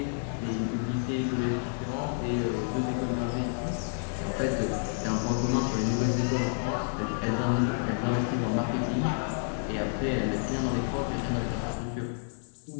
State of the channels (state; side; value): silent; right; 58 dB below the other